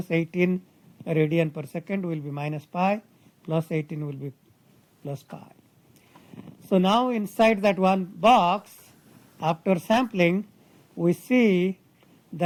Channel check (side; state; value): both; identical; correlation 1.00